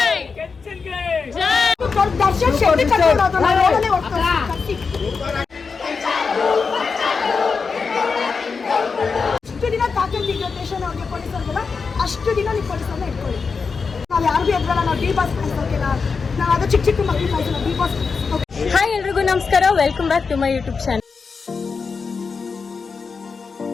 ದರ್ಶನ್ ಶೆಟ್ಟಿ ಕರ್ಕೊಂಡೋದು ನಾನು ನೋಡಲೇ ಹೋಗ್ತಾರೆ. ಅಷ್ಟು ದಿನ ತಾಕಂತಿದ್ದ ಸ್ಟೇಷನ್ ಅವ್ರಿಗೆ ಪೊಲೀಸರಿಗೆಲ್ಲ ಅಷ್ಟು ದಿನ ನೀವು ಪೊಲೀಸರನ್ನ ಇಟ್ಕೊಳ್ಳಿ. ನಾವು ಯಾರಿಗೂ ಎದ್ರಲ್ಲ. ನಾವು ಡಿ ಬಾಸ್ ಕಳಿಸೋಕಿಲ್ಲ. ನಾವು ಅದು ಚಿಕ್ಕ ಚಿಕ್ಕ ಮಕ್ಕಳು ಕಳಿಸೋಣ. D boss. ಹಾಯ್ ಎಲ್ರಿಗೂ ನಮಸ್ಕಾರ. Welcome back to my YouTube channel.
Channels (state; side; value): quieter; right; 5.1 dB